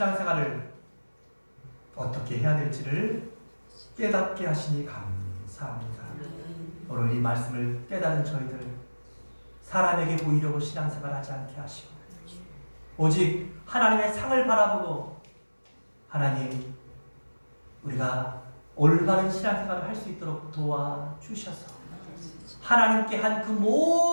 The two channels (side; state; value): both; inverted; correlation -1.00